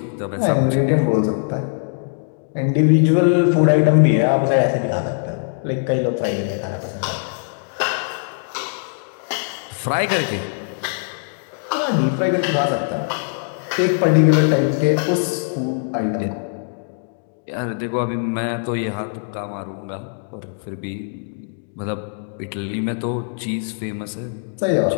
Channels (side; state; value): right; silent; digital silence